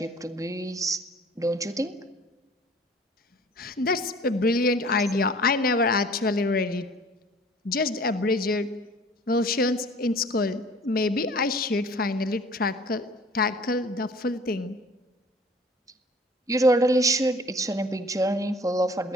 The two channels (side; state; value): both; normal; correlation 0.49